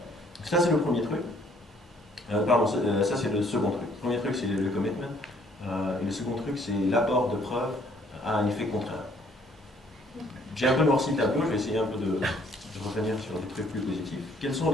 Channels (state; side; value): normal; both; correlation 0.63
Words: Ça, c'est le premier truc. Pardon, ça, c'est le second truc. Le premier truc, c'est le commitment. Et le second truc, c'est l'apport de preuves à un effet contraire. J'ai un peu noirci le tableau, je vais essayer un peu de revenir sur des trucs plus positifs. Quelles sont